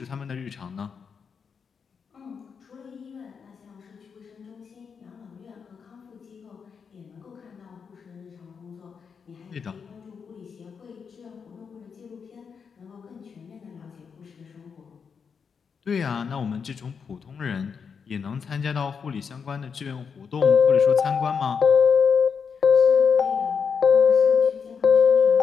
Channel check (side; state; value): right; quieter; 6.2 dB